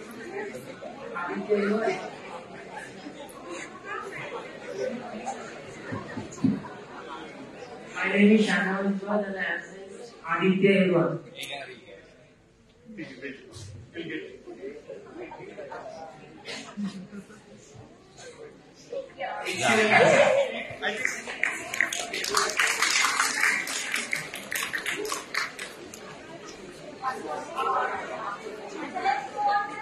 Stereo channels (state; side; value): identical; both; correlation 1.00